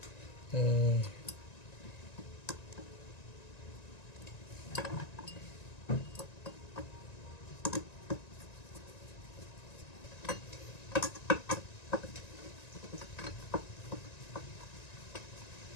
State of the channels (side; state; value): right; late; 1.9 ms